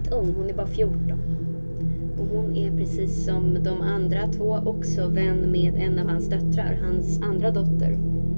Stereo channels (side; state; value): both; inverted; correlation -1.00